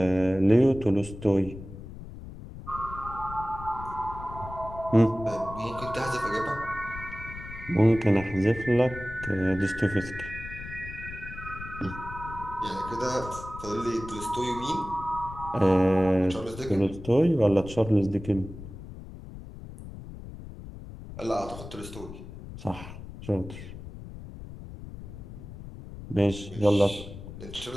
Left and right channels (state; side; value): noise; left; rumble, 12 dB below the sound